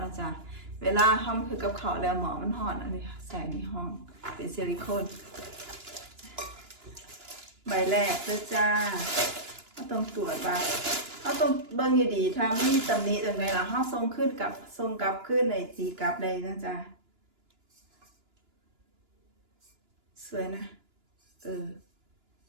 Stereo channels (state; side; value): late; left; 2.9 ms